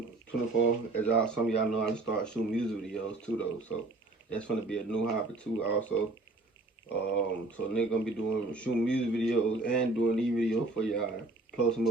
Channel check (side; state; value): left; quieter; 3.1 dB